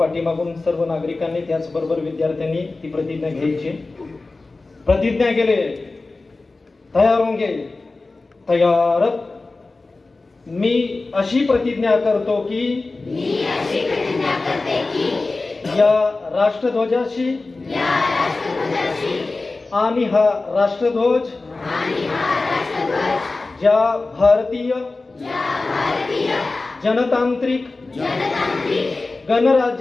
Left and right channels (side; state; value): right; quieter; 3.5 dB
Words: सर्व नागरिकांनी त्याचबरोबर विद्यार्थ्यांनी ती प्रतिज्ञा घ्यायची। प्रतिज्ञा केले, तयार होंगे, तयार। मी अशी प्रतिज्ञा करतो की या राष्ट्रध्वजाशी आणि हा राष्ट्रध्वज ज्या भारतीय जनतांत्रिक